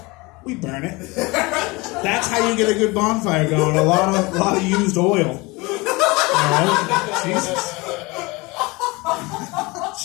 We burn it. That's how you get a good bonfire going. A lot of used oil. All right? Jesus.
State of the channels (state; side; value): quieter; right; 24.5 dB